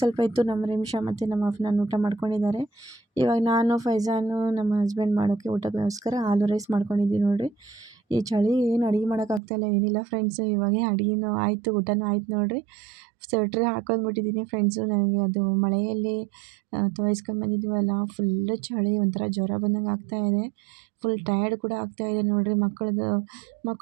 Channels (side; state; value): left; drops out; at 9.4 s